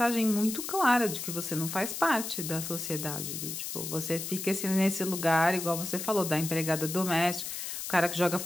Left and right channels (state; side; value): noise; left; hiss, 6 dB below the sound